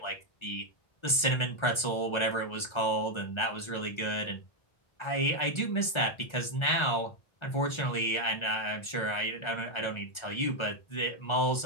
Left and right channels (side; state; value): right; late; 1.3 ms